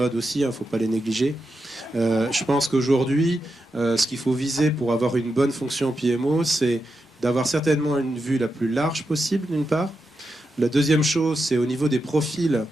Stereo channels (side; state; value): both; normal; correlation 0.87